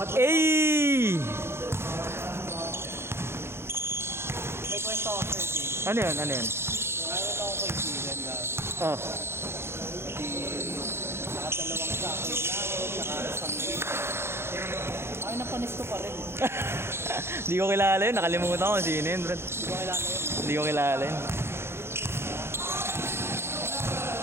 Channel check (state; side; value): late; left; 0.12 ms